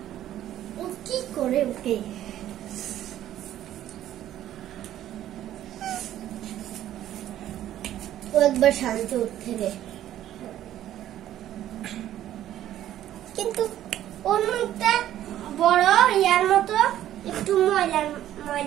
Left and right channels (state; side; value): quieter; left; 12.4 dB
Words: ও কি করে ওকে? ও একবার শান্তি উঠতে রে, কিন্তু ওর মুখটা বড় ইয়ার মতো একটু ময়লা